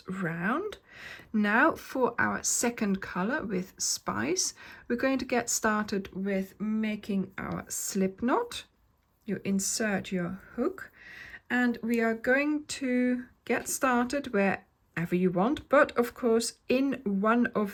round. Now for our second color with Spice, we're going to get started with making our slip knot. You insert your hook and we are going to get started wherever you want, but of course in one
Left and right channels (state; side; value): identical; both; correlation 1.00